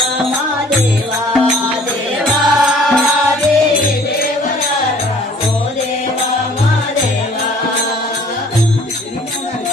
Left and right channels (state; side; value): normal; both; correlation 0.54